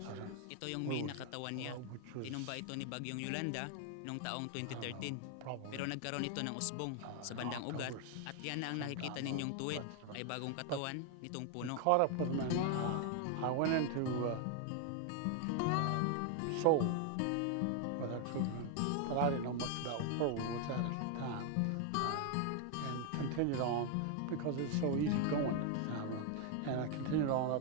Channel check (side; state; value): both; different; correlation 0.00